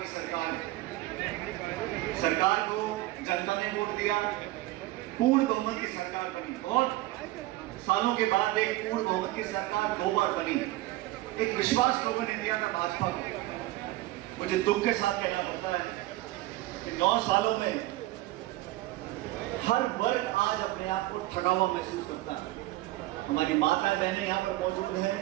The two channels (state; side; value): quieter; left; 17.8 dB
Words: सरकार है। सरकार को जनता ने वोट दिया, पूर्ण बहुमत की सरकार बनी। बहुत सालों के बाद एक पूर्ण बहुमत की सरकार 2 बार बनी। एक विश्वास लोगों ने दिया था भाजपा को। मुझे दुख के साथ कहना पड़ता है कि 9 सालों में हर वर्ग आज अपने आप को ठगा हुआ महसूस करता है। हमारी माताएं बहनें यहाँ पर मौजूद हैं,